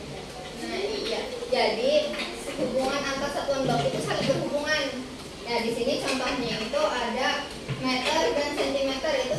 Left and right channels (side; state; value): both; identical; correlation 1.00